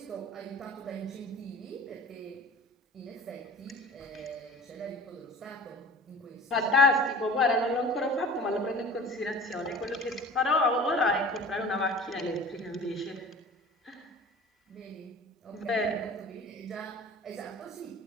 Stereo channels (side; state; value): both; normal; correlation 0.42